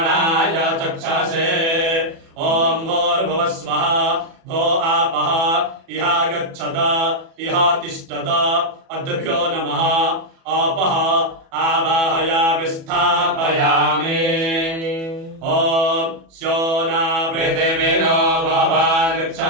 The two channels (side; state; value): left; late; 37 ms